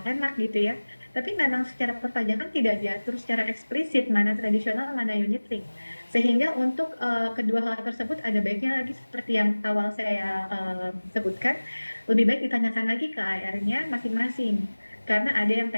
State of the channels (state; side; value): inverted; both; correlation -1.00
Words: enak gitu ya. Tapi memang secara perpajakan tidak diatur secara eksplisit mana tradisional, mana unit link. Sehingga untuk kedua hal tersebut ada baiknya lagi seperti yang awal saya sebutkan, lebih baik ditanyakan lagi ke AR-nya masing-masing. Karena ada yang